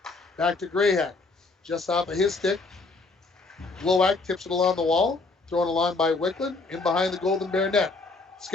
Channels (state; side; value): quieter; right; 3.7 dB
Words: Back to Grayhack. Just off of his stick. Glowak tips it along the wall. Thrown along by Wickland. In behind the Golden Bear net.